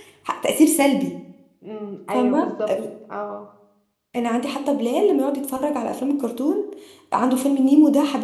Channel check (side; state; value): both; identical; correlation 1.00